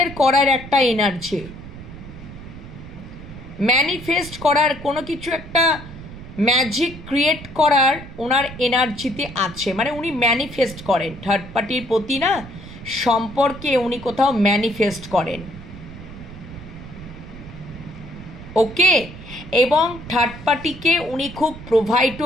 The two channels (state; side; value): noise; right; rumble, 14 dB below the sound